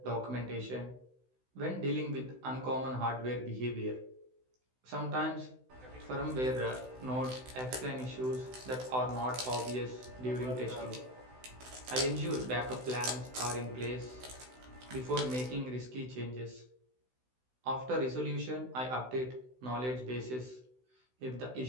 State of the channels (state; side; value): late; left; 16 ms